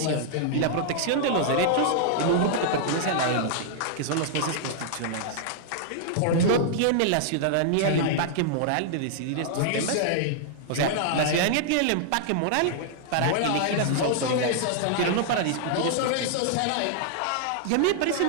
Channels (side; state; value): both; different; correlation -0.01